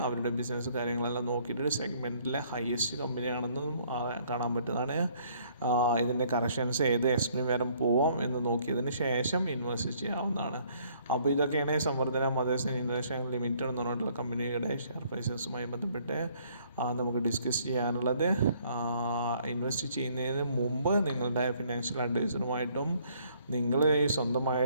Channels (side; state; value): both; inverted; correlation -0.63